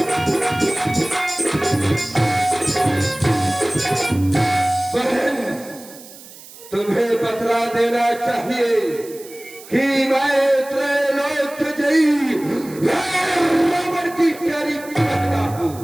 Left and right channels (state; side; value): noise; right; hiss, 19 dB below the sound